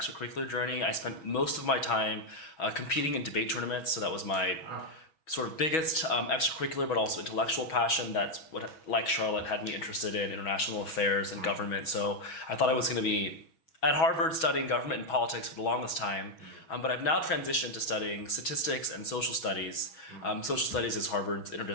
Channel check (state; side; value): late; right; 6.2 ms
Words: journey. I spent most of my time competing in debate tournaments, so that was my sort of biggest extracurricular but also intellectual passion. That's what, like Charlotte, had me interested in international affairs and government. So I thought I was going to be at Harvard studying government and politics for the longest time, but I've now transitioned to studying statistics and social studies. Social studies is Harvard's